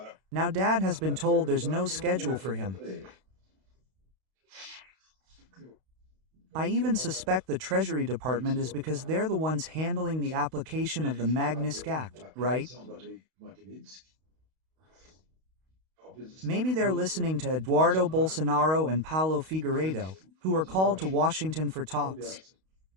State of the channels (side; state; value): left; late; 32 ms